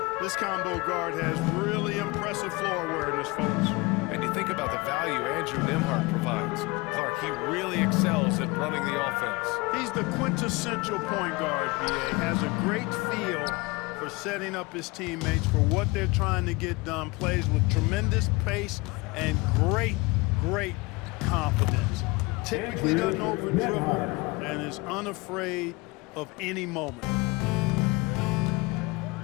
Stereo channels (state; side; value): quieter; right; 24.5 dB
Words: This combo guard has really impressive floor awareness, folks. And you think about the value Andrew Nembhard provides. Clark, he really excels at running the offense. He's the quintessential point guard, BA. Has a great feel for setting up his teammates for what they're trying to get done. Plays with tremendous pace and great confidence. Typically doesn't over-dribble and is unafraid of any moment.